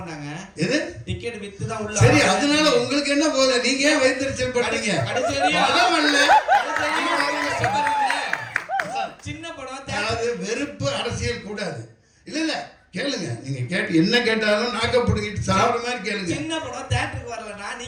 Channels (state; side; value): identical; both; correlation 1.00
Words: எது? டிக்கெட் வித்து தான் உள்ள. சரி, அதனால உங்களுக்கு என்ன போகுது? நீங்க ஏன் வைத்திருச்சல் பண்றீங்க? சின்ன படம், அதாவது வெறுப்பு அரசியல் கூடாது. இல்ல இல்ல கேளுங்க, நீங்க கேட்டு என்ன கேட்டாலும் நாக்க புடுங்கிட்டு சாப்பிடுற மாதிரி கேளுங்க. சின்ன படம் தியேட்டருக்கு வரலனா